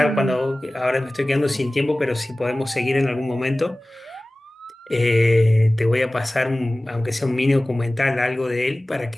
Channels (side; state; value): both; normal; correlation 0.98